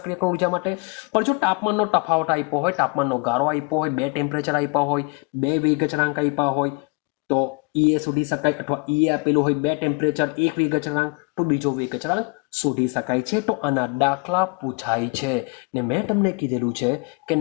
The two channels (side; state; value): right; quieter; 31.9 dB